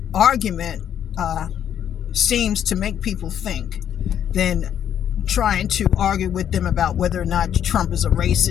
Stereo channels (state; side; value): quieter; right; 9.6 dB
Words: argument seems to make people think than trying to argue with them about whether or not Trump is a